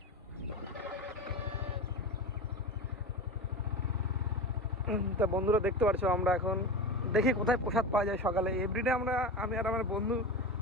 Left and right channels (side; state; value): both; normal; correlation 0.26